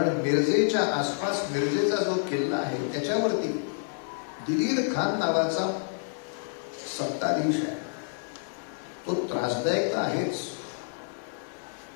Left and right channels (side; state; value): right; silent; digital silence